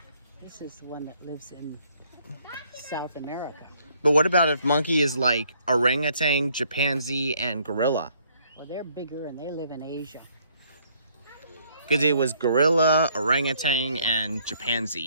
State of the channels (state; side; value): inverted; both; correlation -0.65